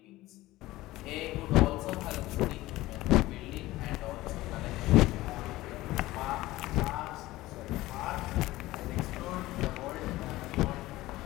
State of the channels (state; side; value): quieter; right; 17.6 dB